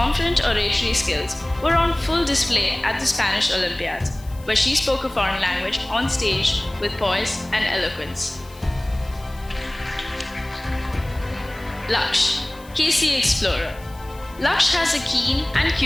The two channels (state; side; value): noise; left; hiss, 24 dB below the sound